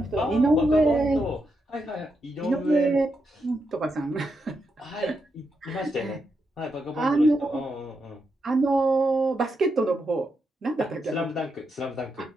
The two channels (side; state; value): both; normal; correlation 0.83